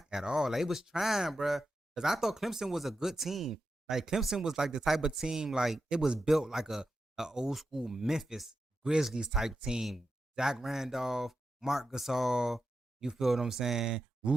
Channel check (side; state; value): both; normal; correlation 0.88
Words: at all. Like it was trying, bro. Cause I thought Clemson was a good team. Like Clemson was like the type of team, like it was built like a old school Memphis Grizzlies type team. Zach Randolph, Mark Gasol, you feel what I'm saying?